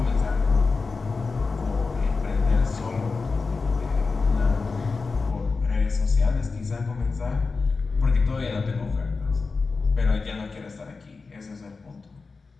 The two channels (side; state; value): right; quieter; 4.3 dB